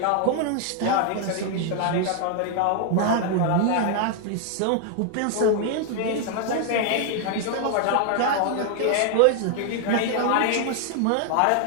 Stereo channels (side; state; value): both; different; correlation 0.00